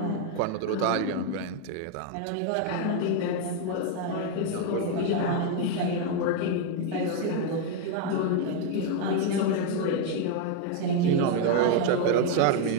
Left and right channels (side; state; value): both; different; correlation 0.01